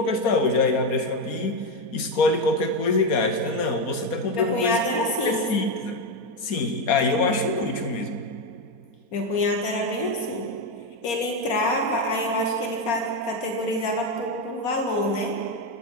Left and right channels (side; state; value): right; late; 4.3 ms